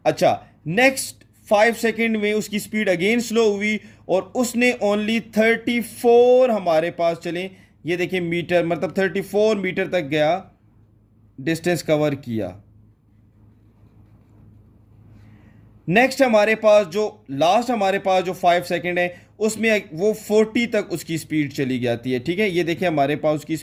अच्छा नेक्स्ट 5 सेकेंड में उसकी स्पीड अगेन स्लो हुई और उसने ओनली 34 हमारे पास, चलें ये देखिए मीटर, मतलब 34 मीटर तक गया, डिस्टेंस कवर किया। नेक्स्ट हमारे पास जो लास्ट हमारे पास जो 5 सेकेंड है उसमें वो 40 तक उसकी स्पीड चली जाती है। ठीक है, ये देखिए हमारे पास उसकी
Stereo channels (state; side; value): identical; both; correlation 1.00